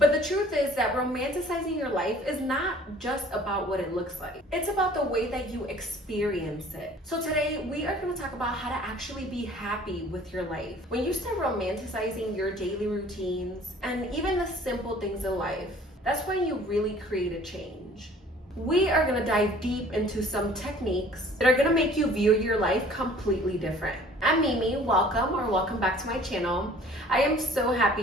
the truth is that romanticizing your life is not just about what it looks like. It's about the way that you experience it. So today we are going to talk about how to actually be happy with your life. When you start romanticizing your daily routines and even the simple things in life, that's when you really create a change. We are going to dive deep into some techniques that are going to make you view your life completely different. I'm Mimi, welcome back to my channel. I am so happy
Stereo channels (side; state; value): both; normal; correlation 0.52